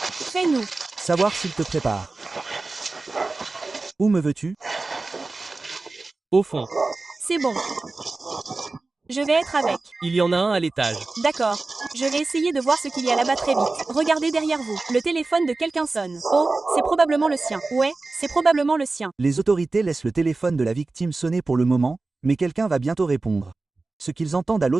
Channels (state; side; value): quieter; left; 3.5 dB